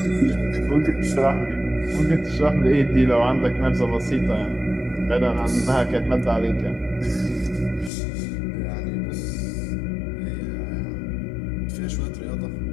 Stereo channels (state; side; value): drops out; right; at 7.9 s